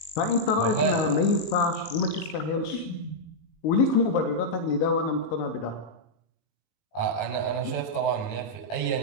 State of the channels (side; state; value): right; late; 19 ms